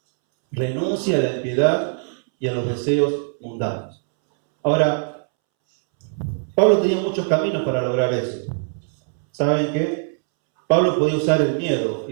renuncie a la impiedad y a los deseos mundanos. Ahora, Pablo tenía muchos caminos para lograr eso. ¿Saben qué? Pablo podía usar el miedo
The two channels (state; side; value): silent; left; 65 dB below the other